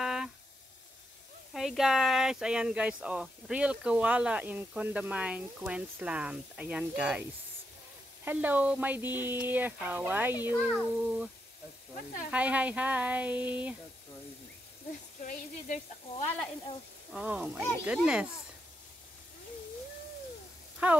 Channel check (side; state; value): both; normal; correlation 0.82